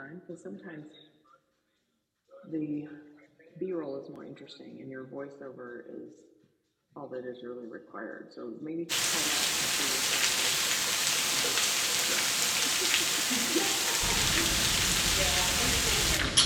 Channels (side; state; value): both; identical; correlation 1.00